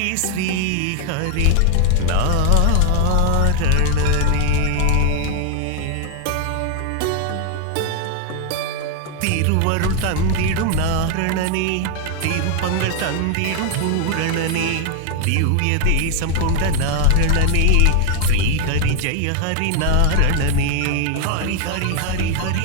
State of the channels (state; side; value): different; both; correlation 0.00